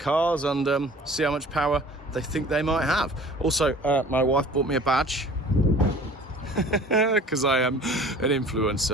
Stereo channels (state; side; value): normal; both; correlation 0.47